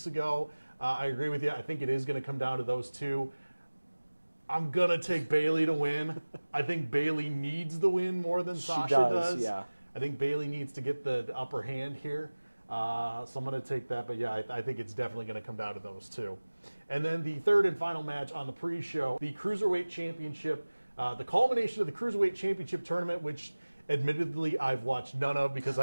ago. I agree with you. I think it is going to come down to those two. I'm going to take Bayley to win. I think Bayley needs the win more than Sasha does. Yeah. I think Bayley needs to get the upper hand here. So I'm going to take that. But, yeah, I think it's definitely going to come down to those two. And then the third and final match on the pre-show, the Cruiserweight Championship, the culmination of the Cruiserweight Championship tournament, which admittedly I've watched none of because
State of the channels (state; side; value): inverted; both; correlation -1.00